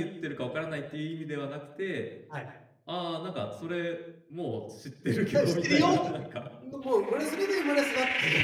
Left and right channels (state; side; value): identical; both; correlation 1.00